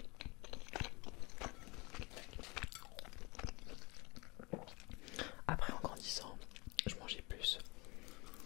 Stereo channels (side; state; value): right; quieter; 25.7 dB